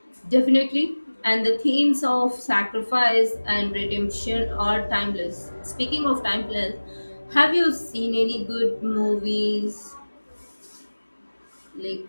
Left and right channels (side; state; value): both; inverted; correlation -1.00